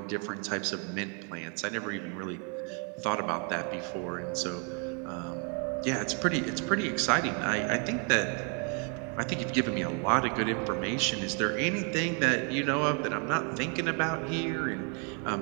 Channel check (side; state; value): left; quieter; 38.1 dB